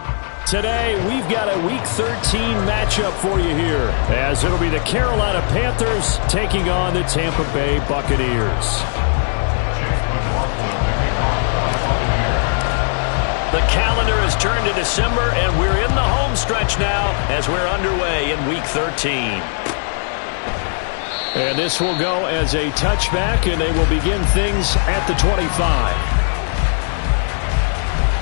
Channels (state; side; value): silent; right; 65 dB below the other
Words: Today, we've got a Week 13 matchup for you here, as it'll be the Carolina Panthers taking on the Tampa Bay Buccaneers. The calendar has turned to December, and we're in the home stretch now as we're underway in Week 13. And this will go as a touchback, and they will begin things at the 25.